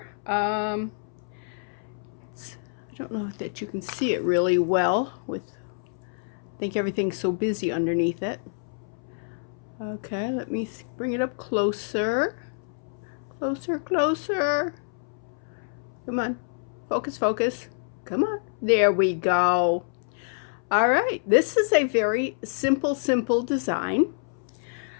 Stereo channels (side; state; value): right; silent; 60 dB below the other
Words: I don't know that you can see it really well with, I think everything's so busy underneath it. Okay, let me bring it up closer. Closer. Come on, focus. Come on, there we go. All right, this is a very simple design.